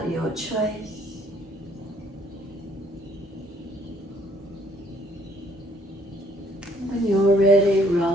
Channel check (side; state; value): both; normal; correlation 0.63